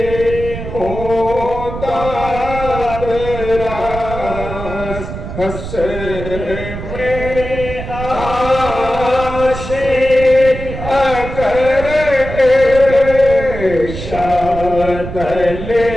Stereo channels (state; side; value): noise; right; rumble, 8 dB below the sound